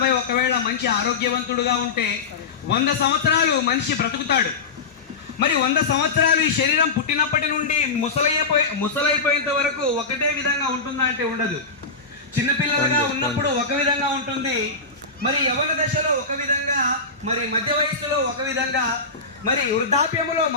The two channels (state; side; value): quieter; right; 4.2 dB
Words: ఒకవేళ మంచి ఆరోగ్యవంతుడుగా ఉంటే 100 సంవత్సరాలు మనిషి బ్రతుకుతాడు. మరి 100 సంవత్సరాలు ఈ శరీరం పుట్టినప్పటి నుండి ముసలైపోయేంత వరకు ఒకటే విధంగా ఉంటుందా అంటే ఉండదు. చిన్నపిల్లలుగా ఉన్నప్పుడు ఒక విధంగా ఉంటుంది, మరి యవ్వన దశలో ఒక విధంగా, మరి మధ్య వయస్సులో ఒక విధంగా, మరి వృద్ధాప్యములో